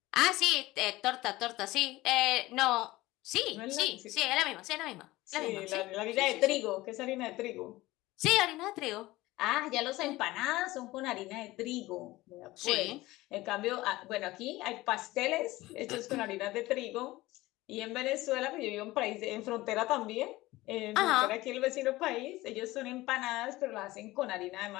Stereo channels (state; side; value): quieter; right; 18.6 dB